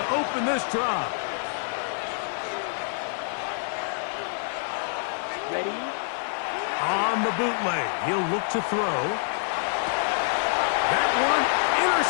open this drive. Ready? On the bootleg, he'll look to throw. That one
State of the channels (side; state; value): right; silent; 61 dB below the other